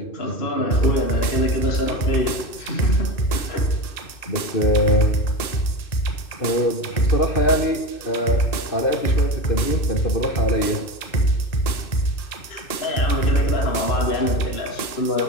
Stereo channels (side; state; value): right; late; 2.6 ms